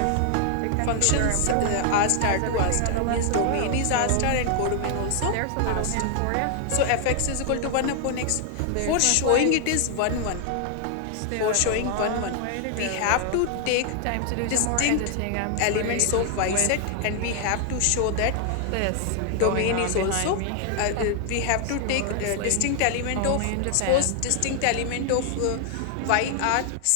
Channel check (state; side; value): different; both; correlation 0.00